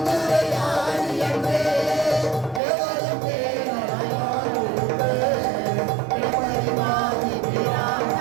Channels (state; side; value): drops out; left; at 2.6 s